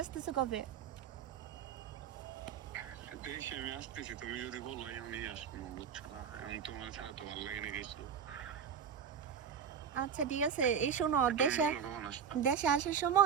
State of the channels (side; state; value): left; quieter; 7.5 dB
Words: আসতেছো কবে? দেশে আমি আসতেছি, তুমি যদি বলো এমনই আসবো, বুঝছো না? এখন তোমার ছাড়া তো ভালো লাগে না কিছু। আচ্ছা ঠিক আছে। এই শোনো, তুমি দেশে বলো কখন আসবা? দেশে আসার